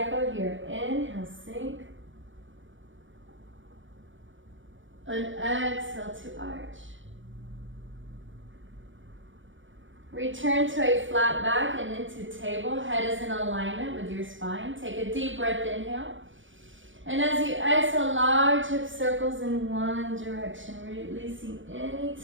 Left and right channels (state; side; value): late; left; 0.56 ms